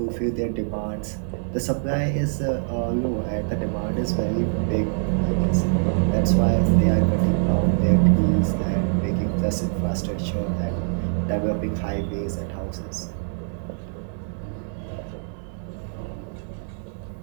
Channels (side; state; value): left; silent; digital silence